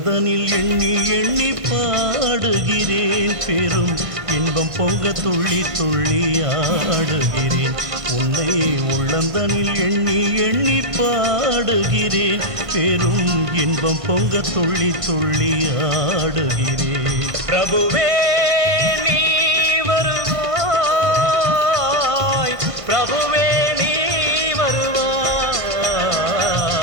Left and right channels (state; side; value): late; left; 1.5 ms